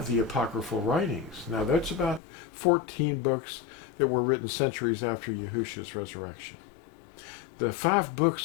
the apocryphal writings. Now, that's about 14 books that were written centuries after Yahusha's resurrection. The 5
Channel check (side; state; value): right; drops out; at 2.2 s